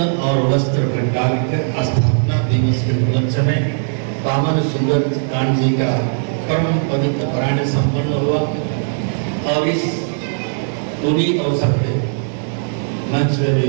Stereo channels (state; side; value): silent; left; digital silence